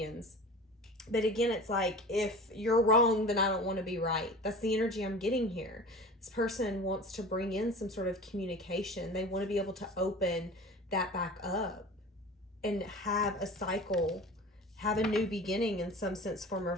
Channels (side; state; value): both; normal; correlation 0.37